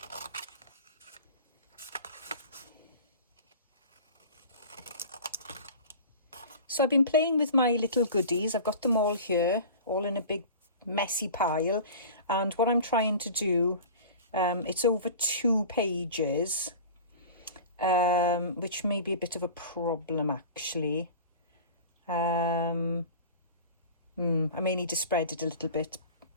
So I've been playing with my little goodies. I've got them all here, all in a big messy pile. And what I'm trying to do, it's over 2 pages, which may be a bit of a problem actually. I may need to spread it a little bit.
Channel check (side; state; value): both; inverted; correlation -0.38